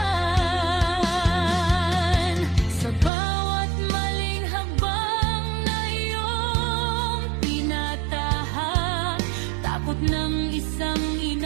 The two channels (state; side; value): drops out; left; at 3.1 s